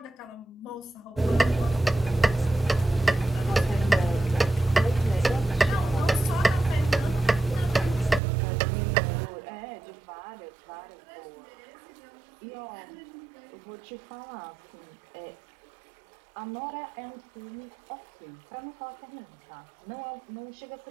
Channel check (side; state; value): left; drops out; at 8.2 s